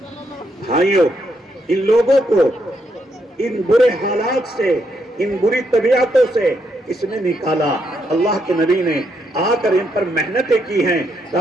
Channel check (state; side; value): normal; both; correlation 0.77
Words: بھائیوں، ان لوگوں کو ان برے حالات سے، ان بری طبیعتوں سے اس نے نکالا۔ اللہ کے نبی نے آ کر ان پر محنتیں کی ہیں۔